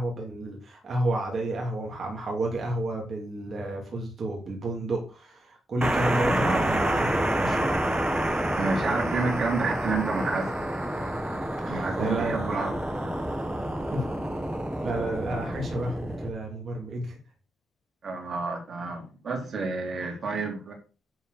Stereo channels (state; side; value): normal; both; correlation 0.86